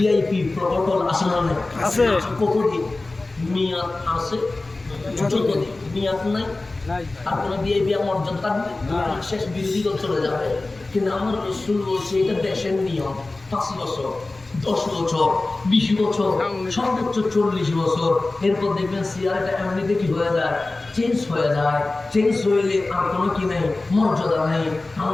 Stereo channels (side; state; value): right; quieter; 3.2 dB